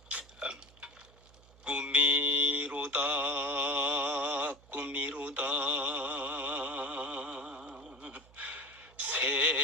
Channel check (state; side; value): noise; right; hum, 25 dB below the sound